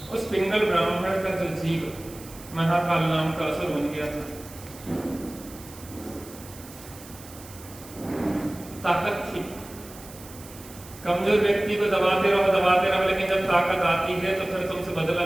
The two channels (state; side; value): noise; right; hiss, 18 dB below the sound